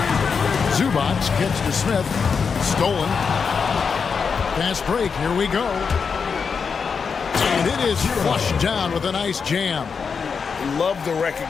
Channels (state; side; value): quieter; right; 5.8 dB